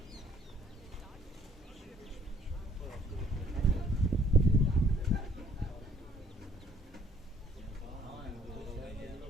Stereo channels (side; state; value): both; normal; correlation 0.62